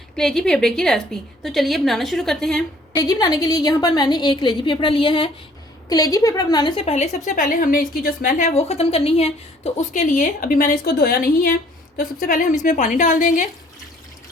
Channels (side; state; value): both; normal; correlation 0.58